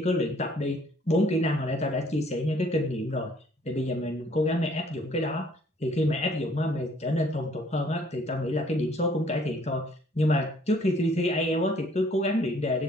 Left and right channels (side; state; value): both; normal; correlation 0.60